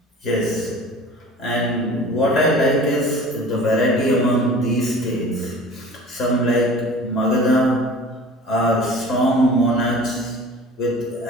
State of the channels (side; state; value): both; normal; correlation 0.43